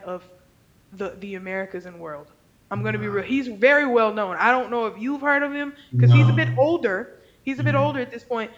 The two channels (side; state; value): both; identical; correlation 1.00